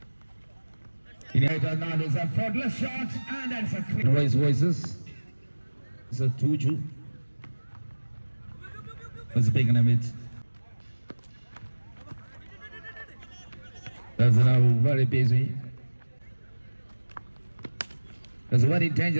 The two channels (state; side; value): inverted; both; correlation -1.00